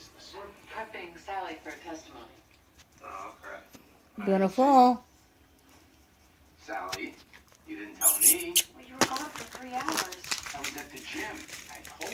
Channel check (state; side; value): identical; both; correlation 1.00